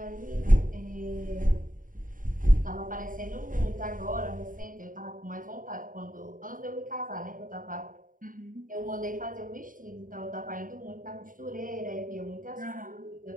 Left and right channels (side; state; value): left; late; 0.39 ms